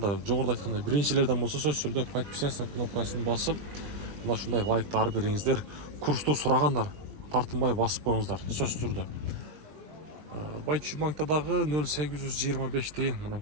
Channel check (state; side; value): late; left; 20 ms